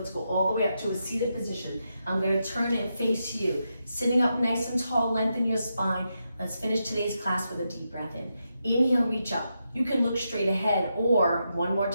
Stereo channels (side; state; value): both; inverted; correlation -0.85